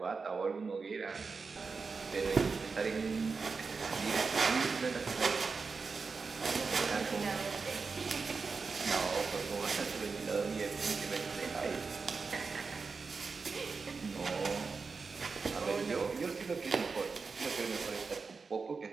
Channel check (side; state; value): left; quieter; 4.7 dB